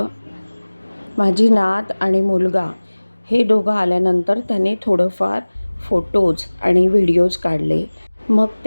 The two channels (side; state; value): both; inverted; correlation -1.00